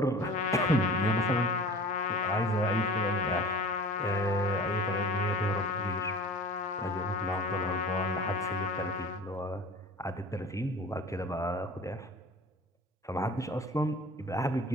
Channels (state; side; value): normal; both; correlation 0.41